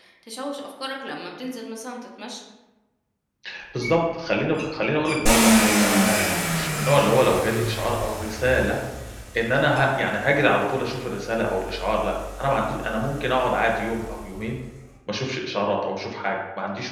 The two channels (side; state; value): both; identical; correlation 1.00